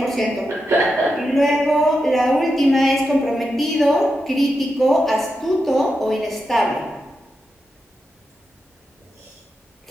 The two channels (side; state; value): both; normal; correlation 0.88